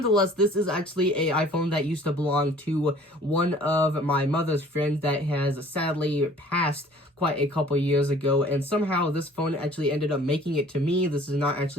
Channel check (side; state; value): both; normal; correlation 0.52